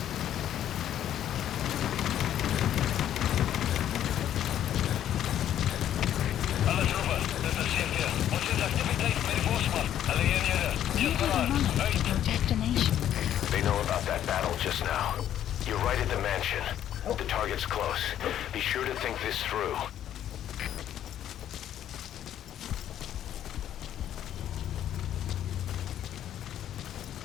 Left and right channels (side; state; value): right; quieter; 10.9 dB